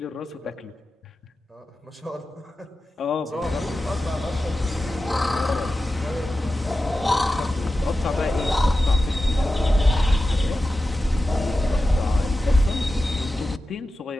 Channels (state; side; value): normal; both; correlation 0.93